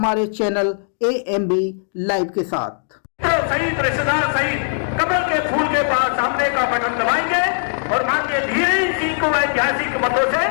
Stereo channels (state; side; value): silent; right; digital silence